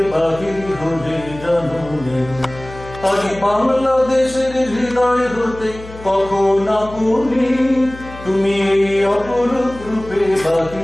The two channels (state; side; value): noise; left; hum, 16 dB below the sound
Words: বাহির হলে জানুনে। আজি বাংলাদেশের হৃদয় হতে কখনো বলি, তুমি এই অপরূপ রূপে